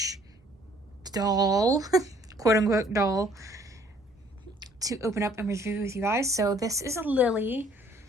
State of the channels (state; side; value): normal; both; correlation 0.59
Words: doll, quote unquote doll, to open up and review with you guys. So this is a Lilly.